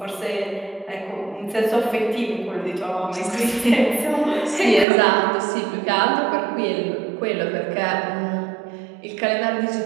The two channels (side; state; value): left; drops out; at 4.9 s